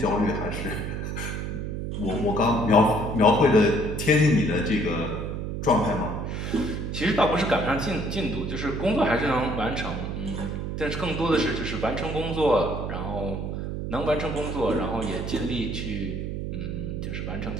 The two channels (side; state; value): right; noise; hum, 4 dB below the sound